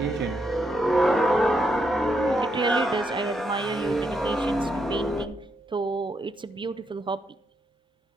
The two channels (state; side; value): normal; both; correlation 0.80